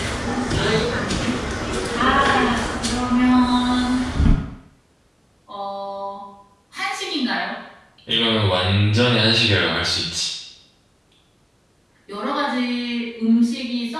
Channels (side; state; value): both; identical; correlation 1.00